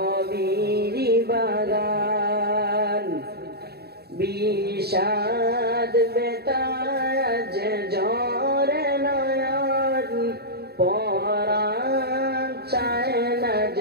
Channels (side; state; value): left; late; 0.47 ms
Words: বাগান বিষাদ বেতাজ ঝরে নয়ন পরাণ চায় না